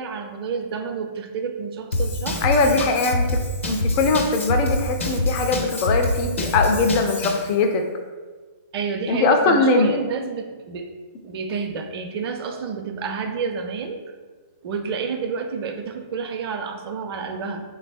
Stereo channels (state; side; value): inverted; both; correlation -0.33